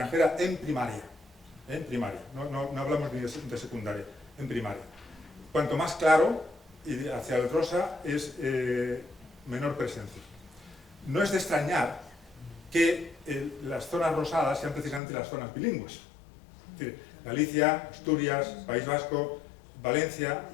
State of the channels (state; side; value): drops out; right; at 15.0 s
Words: en primaria. No hablamos ni de secundaria, en primaria. Cuanto más claro, y hacia el rosa, es menor presencia. No es de extrañar que las zonas rosadas sean precisamente las zonas bilingües. Es decir, Galicia, Asturias, País Vasco, Valencia